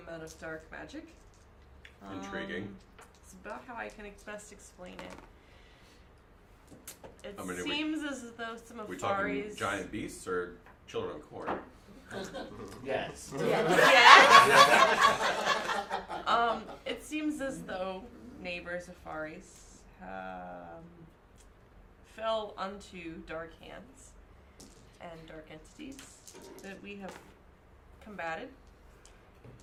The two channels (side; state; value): both; identical; correlation 1.00